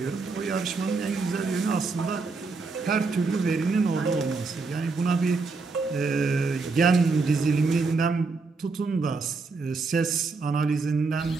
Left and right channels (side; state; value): left; quieter; 4.2 dB